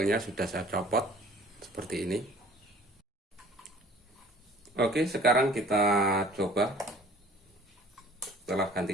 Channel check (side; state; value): both; normal; correlation 0.49